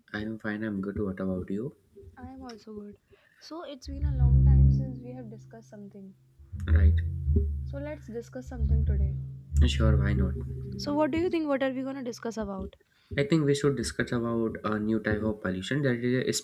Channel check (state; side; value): identical; both; correlation 1.00